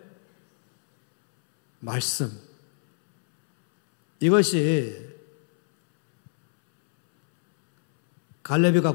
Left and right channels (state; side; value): silent; right; 63 dB below the other